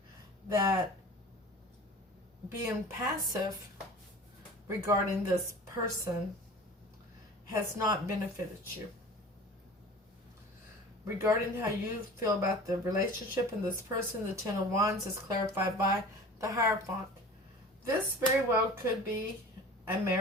that being passive regarding this person has not benefited you. Regarding how you feel about the relationship and this person, the Ten of Wands is clarified by the Hierophant. This very well could be a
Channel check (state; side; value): normal; both; correlation 0.40